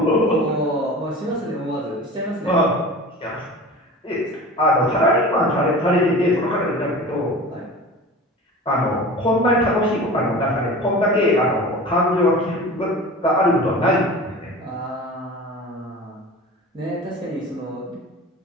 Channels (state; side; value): normal; both; correlation 0.36